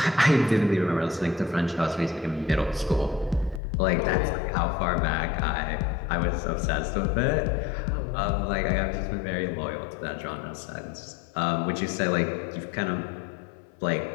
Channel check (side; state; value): right; drops out; at 3.6 s